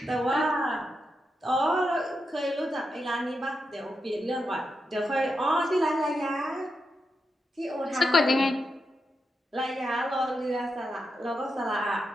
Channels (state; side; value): normal; both; correlation 0.86